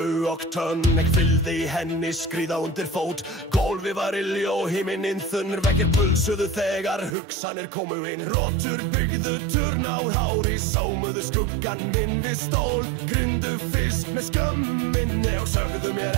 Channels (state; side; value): drops out; left; at 7.2 s